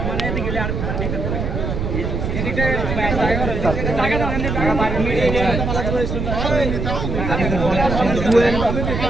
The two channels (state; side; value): noise; right; rumble, 2 dB below the sound